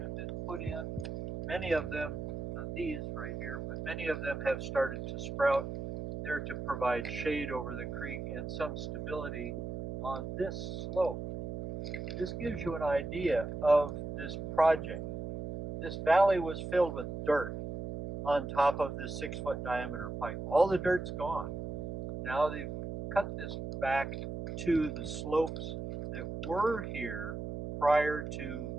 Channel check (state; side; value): noise; right; hum, 6 dB below the sound